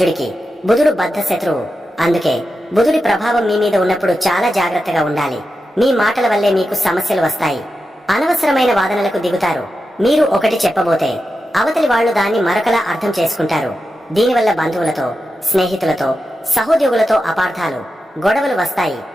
బుధుడు బద్ధ శత్రువు. అందుకే బుధుడి ప్రభావం మీ మీద ఉన్నప్పుడు చాలా జాగ్రత్తగా ఉండాలి. మీ మాటల వల్లే మీకు సమస్యలు వస్తాయి. అనవసరమైన వాదనలకు దిగుతారు. మీరు ఒకటి చెప్పబోతే అవతలి వాళ్లు దాన్ని మరొకలా అర్థం చేసుకుంటారు. దీనివల్ల బంధువులతో, స్నేహితులతో, సహోద్యోగులతో అపార్థాలు, గొడవలు వస్తాయి.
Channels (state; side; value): normal; both; correlation 0.90